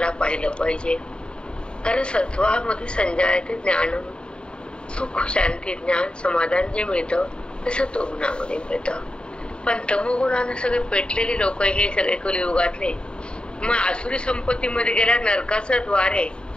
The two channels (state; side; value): late; right; 0.051 ms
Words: पाहिलं पाहिजे. कारण सत्वामध्ये संजयाचे ज्ञान, सुख, शांती, ज्ञान, समाधान जे मिळतं ते सत्वगुणामध्ये मिळतं. पण तमोगुणानं सगळे पेटलेले लोक हे सगळे कलियुगातले मग आसुरी संपत्तीमध्ये गेल्या नरकाचं द्वार आहे